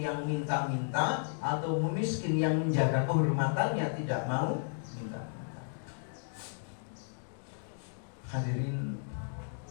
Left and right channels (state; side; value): silent; right; digital silence